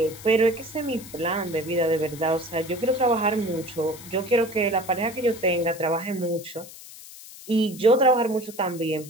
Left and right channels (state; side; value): noise; left; hiss, 16 dB below the sound